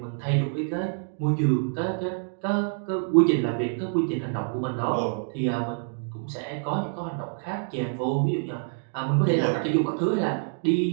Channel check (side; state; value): left; silent; 60 dB below the other